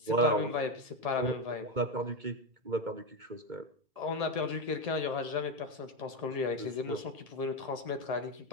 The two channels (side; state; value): left; late; 1.7 ms